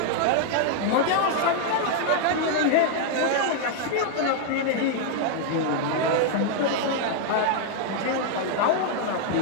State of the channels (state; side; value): different; both; correlation 0.00